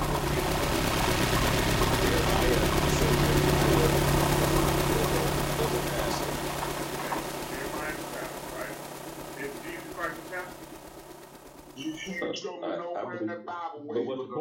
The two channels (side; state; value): both; identical; correlation 1.00